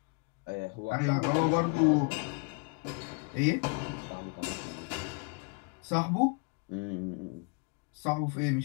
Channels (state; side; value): quieter; right; 35.6 dB